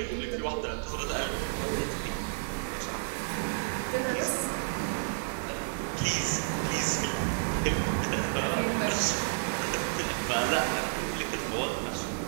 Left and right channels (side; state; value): left; silent; digital silence